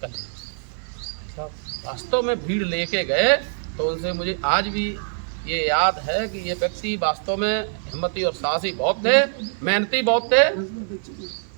कर लीजिए। अच्छा, वास्तव में भीड़ लेके गए तो उनसे मुझे आज भी ये याद है कि ये व्यक्ति वास्तव में हिम्मती और साहसी बहुत थे, मेहनती बहुत थे,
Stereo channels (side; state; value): left; silent; 63 dB below the other